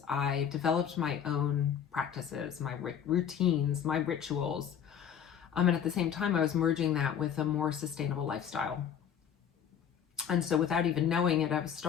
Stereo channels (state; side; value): quieter; right; 8.5 dB